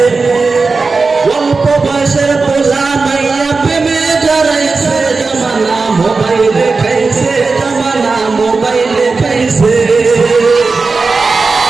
অল্প বয়সের পোলা মাইয়া প্রেমে জড়াইছে, জমানা মোবাইলে খাইছে, জমানা মোবাইলে খাইছে।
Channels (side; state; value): left; quieter; 4.2 dB